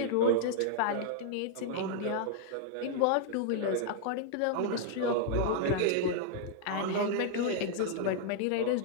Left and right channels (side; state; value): both; different; correlation -0.01